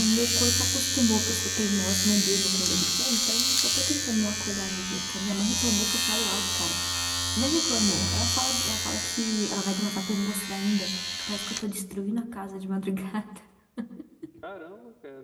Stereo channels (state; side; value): identical; both; correlation 1.00